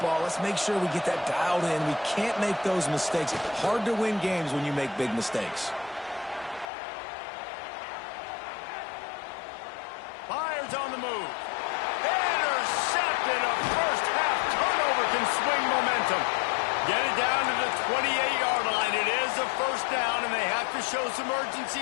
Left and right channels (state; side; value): drops out; right; at 6.7 s